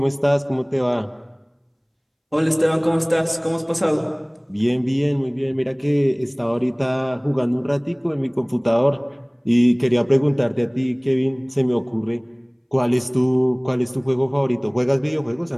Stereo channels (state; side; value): identical; both; correlation 1.00